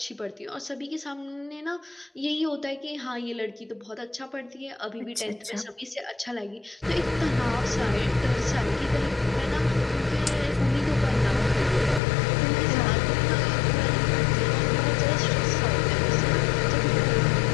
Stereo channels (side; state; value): right; drops out; at 12.0 s